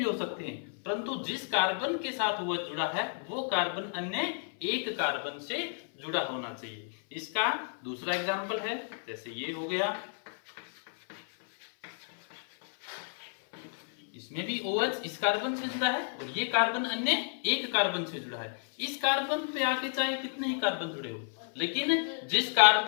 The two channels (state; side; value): silent; right; 57 dB below the other